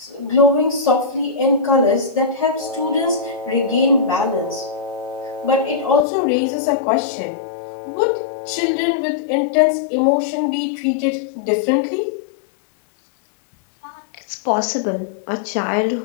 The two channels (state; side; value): drops out; right; at 6.1 s